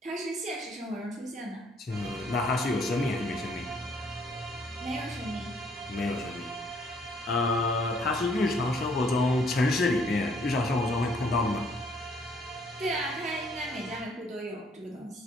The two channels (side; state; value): both; normal; correlation 0.65